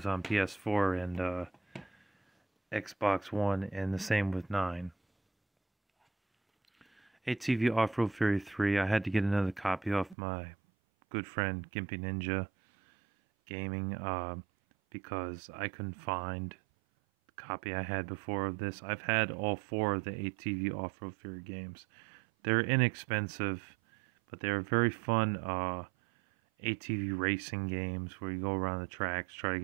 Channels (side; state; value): left; drops out; at 10.2 s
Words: on PS4 and Xbox One, and the same with 9. ATV Off-Road Fury 3, I had to get another copy off my good friend Gimpy Ninja Gaming because I couldn't find the copy I had before of this. I've had all 4 of the ATV Off-Road Fury games. They're inexpensive, but they're very fun ATV racing games where you go around the tracks, try to